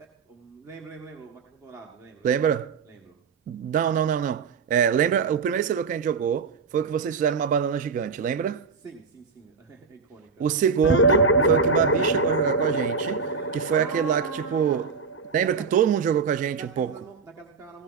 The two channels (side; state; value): left; quieter; 5.3 dB